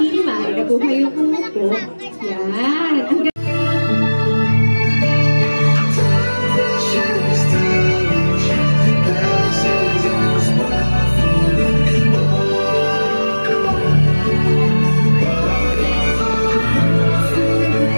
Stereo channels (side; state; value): both; inverted; correlation -1.00